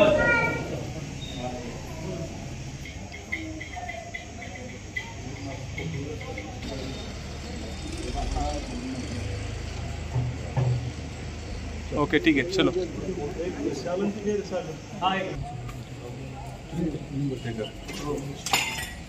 ओके ठीक है चलो।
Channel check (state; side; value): identical; both; correlation 1.00